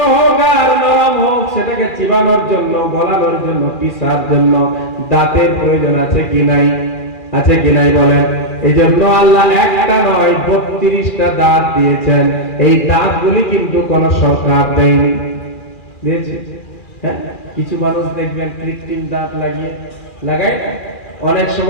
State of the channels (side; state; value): right; late; 2.4 ms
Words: হোক আর নরম হোক, সেটাকে চিবানোর জন্য, গলানোর জন্য, পিসার জন্য দাঁতের প্রয়োজন আছে কি নাই? আছে কি নাই বলেন? এই জন্য আল্লাহ একটা নয় 32টা দাঁত দিয়েছেন। এই দাঁতগুলি কিন্তু কোন সরকার দেয়নি, দিয়েছে। হ্যাঁ, কিছু মানুষ দেখবেন কৃত্রিম দাঁত লাগায়, অনেক